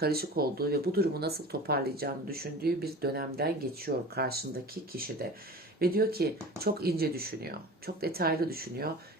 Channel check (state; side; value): normal; both; correlation 0.37